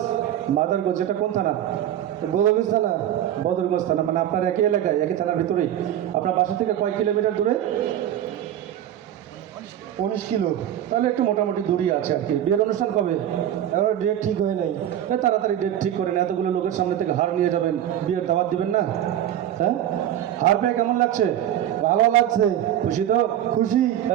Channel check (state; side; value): quieter; left; 11.4 dB